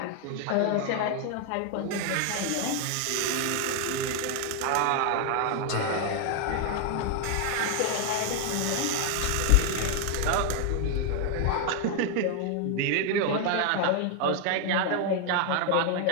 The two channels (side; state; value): both; different; correlation 0.00